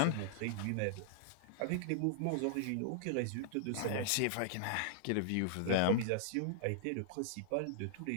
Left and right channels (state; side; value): different; both; correlation -0.01